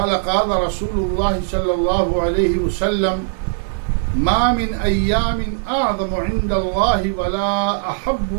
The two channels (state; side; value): silent; left; digital silence